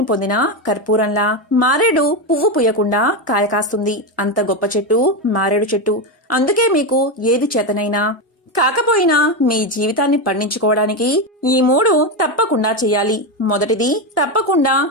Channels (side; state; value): both; normal; correlation 0.11